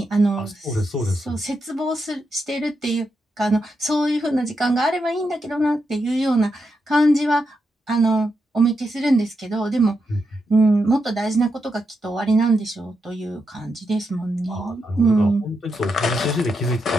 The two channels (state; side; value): normal; both; correlation 0.84